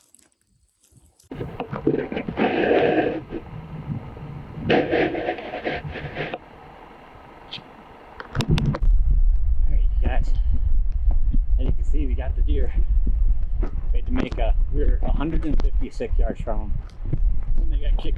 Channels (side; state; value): both; identical; correlation 1.00